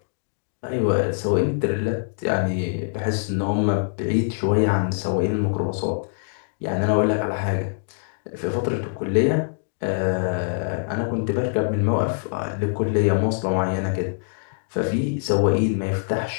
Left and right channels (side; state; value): right; silent; digital silence